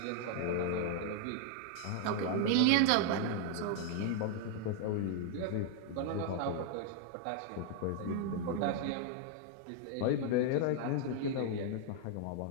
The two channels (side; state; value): both; different; correlation 0.00